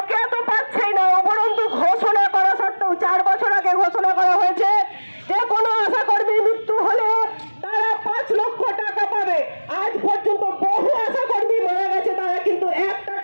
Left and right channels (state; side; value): inverted; both; correlation -1.00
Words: তো পাচ্ছেই না, উপরন্তু ঘোষণা করা সত্ত্বেও 4 বছর আগে ঘোষণা করা হয়েছে যে কোনো আশা কর্মীর মৃত্যু হলে তারা 5 লক্ষ টাকা পাবে। আজ পর্যন্ত বহু আশা কর্মী মারা গেছে, তারা কিন্তু 1টা